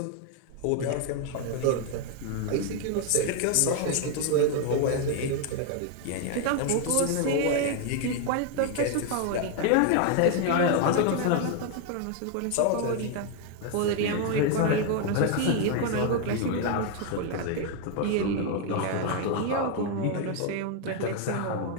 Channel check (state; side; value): different; both; correlation 0.01